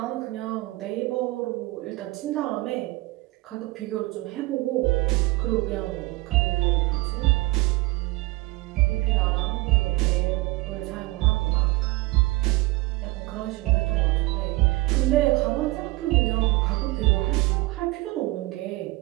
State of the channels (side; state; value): left; quieter; 21.1 dB